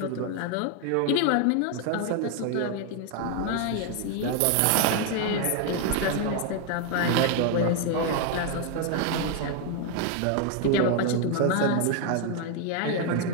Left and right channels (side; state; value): both; different; correlation 0.01